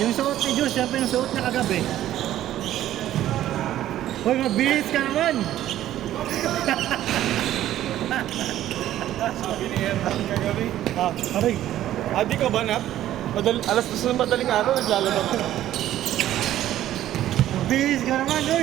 suot ni Diyos, yan pa yung suot niya kagabi. Hoy, mabilis ka naman! Sabi ni Herman kagabi. Ah, aray. Di ka ba, Nat? Alas 2 ng madaling araw, naglalaba ka. Mabilis ka naman,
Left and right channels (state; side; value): quieter; left; 12.9 dB